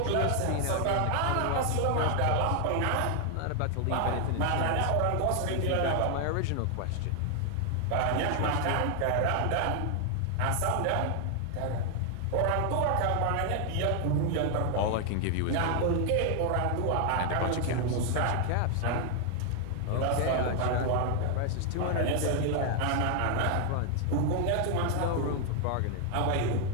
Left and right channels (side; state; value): both; different; correlation 0.00